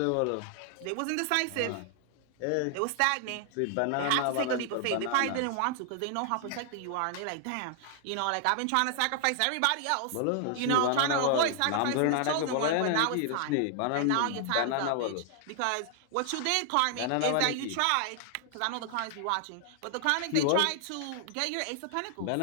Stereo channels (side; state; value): both; different; correlation 0.00